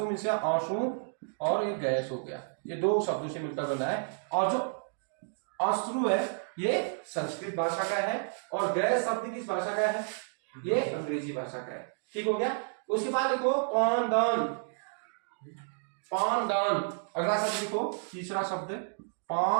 मीन्स आंसू और ये गैस हो गया। ये दो शब्दों से मिलकर बना है। और जो अश्रु है ये संस्कृत भाषा का है और गैस शब्द किस भाषा का है? ये अंग्रेजी भाषा का है। ठीक हो गया। उसके बाद लिखो पानदान। पानदान। अगला शब्द लिखो, तीसरा शब्द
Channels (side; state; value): left; silent; digital silence